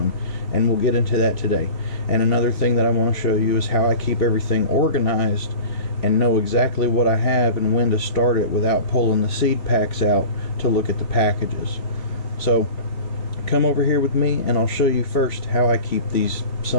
and we'll get into that today. And another thing that I want to show you is how I keep everything organized and know exactly what I have and when to start it without pulling the seed packs out to look at the packages. So come over here with me and I'll show you first how I keep these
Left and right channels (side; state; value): right; late; 3.5 ms